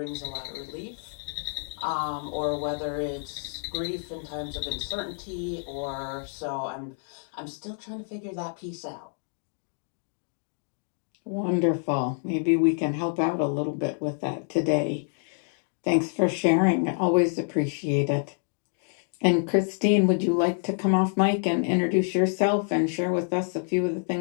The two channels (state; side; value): silent; right; 60 dB below the other